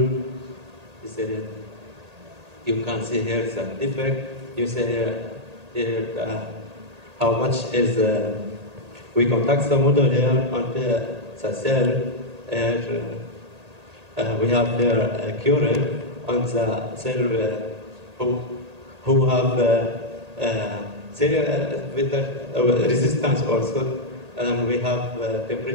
You can see here the defect. You see here how much is we contact the model here and the cell. We have here a current on the cell who have resistance also, and we have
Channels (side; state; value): left; late; 1.8 ms